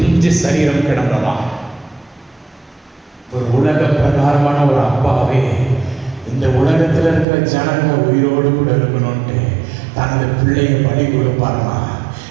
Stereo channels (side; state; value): left; drops out; at 7.2 s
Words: சரீரம் கிடந்ததா. ஒரு உலக பிரகாரமான ஒரு அப்பாவே இந்த உலகத்துல இருக்கிற ஜனங்க உயிரோடு கூட இருக்கணும்ட்டு தனது பிள்ளையை பலி கொடுப்பாருன்னா